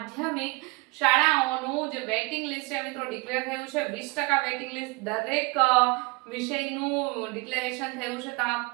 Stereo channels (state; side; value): quieter; left; 26.7 dB